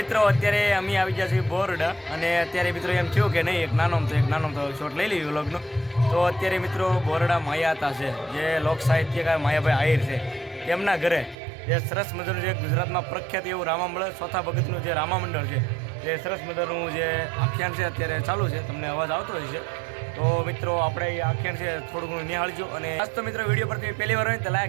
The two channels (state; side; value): drops out; left; at 11.4 s